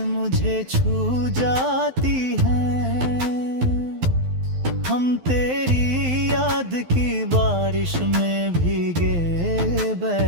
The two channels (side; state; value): left; late; 12 ms